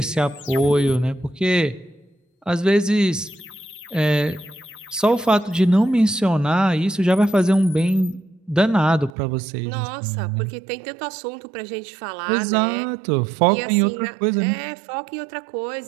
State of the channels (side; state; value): left; drops out; at 9.1 s